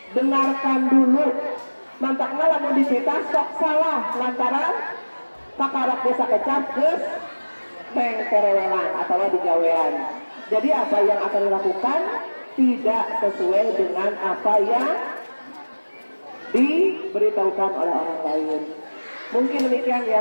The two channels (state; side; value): inverted; both; correlation -1.00